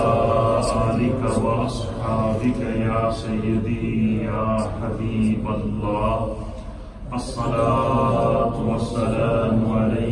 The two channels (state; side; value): identical; both; correlation 1.00